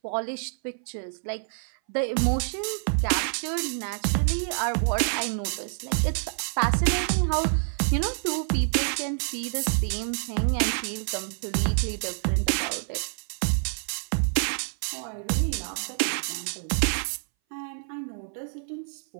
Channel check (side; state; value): left; silent; 60 dB below the other